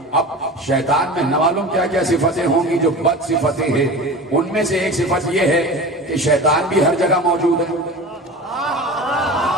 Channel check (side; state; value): both; normal; correlation 0.33